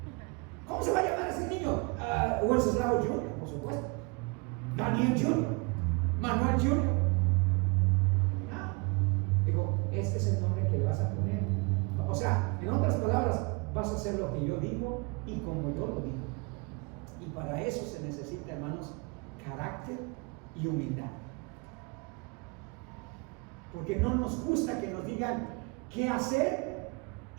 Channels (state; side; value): quieter; left; 30.5 dB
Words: ¿Cómo se va a llamar ese niño? Wenceslao Junior, por supuesto. Daniel Junior. Manuel Junior. No. Digo, este es el nombre que le vas a poner. O sea, en otras palabras, vas a hacer lo que yo digo y como yo lo digo. Y para eso se necesita, hermanos, carácter y humildad. Porque no nos gusta que nos digan qué hacer